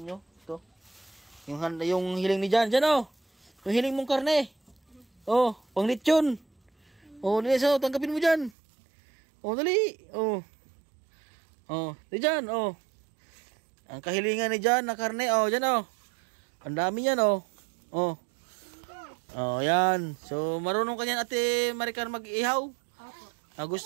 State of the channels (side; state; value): left; drops out; at 8.5 s